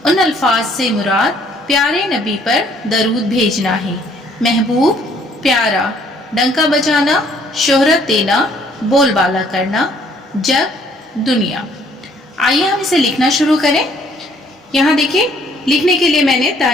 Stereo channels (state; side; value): normal; both; correlation 0.62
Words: उन अल्फाज से मुराद प्यारे नबी पर दरूद भेजना है। महबूब, प्यारा, डंका बजाना, शोहरत देना, बोलबाला करना, जग, दुनिया। आइए हम इसे लिखना शुरू करें। यहाँ देखिए लिखने के लिए मैंने